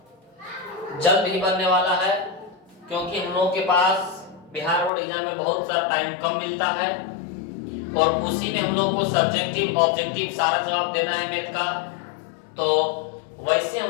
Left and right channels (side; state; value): right; drops out; at 4.9 s